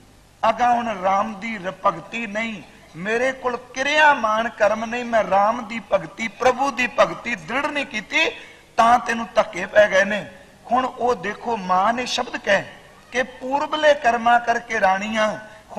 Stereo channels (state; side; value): identical; both; correlation 1.00